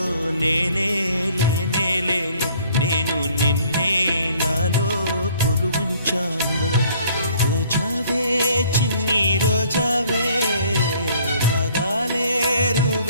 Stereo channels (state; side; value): inverted; both; correlation -0.58